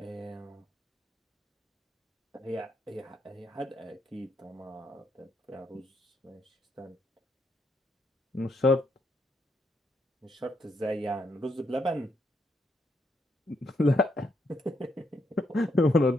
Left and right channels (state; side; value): normal; both; correlation 0.77